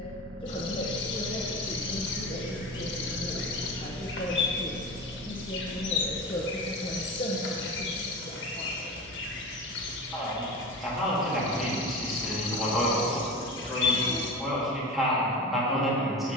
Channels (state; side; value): normal; both; correlation 0.29